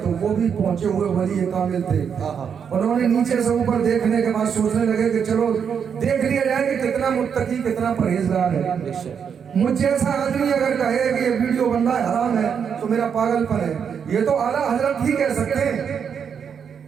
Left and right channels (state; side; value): quieter; left; 7.2 dB